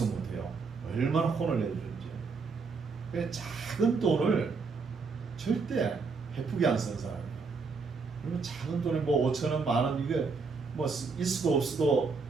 못해요. 얼마나 혼을 내주는지. 그 작은 돈을 절대 베푸게 안 쓰는 사람이에요. 그러면 작은 돈이 뭐 5,000원, 만원 이게 뭐 있어도 없어도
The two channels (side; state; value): left; quieter; 4.6 dB